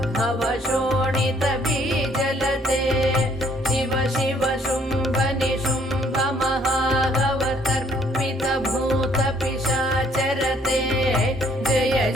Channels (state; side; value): normal; both; correlation 0.64